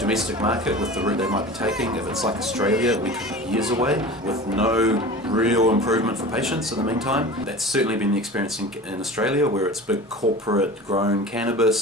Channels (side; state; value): both; normal; correlation 0.36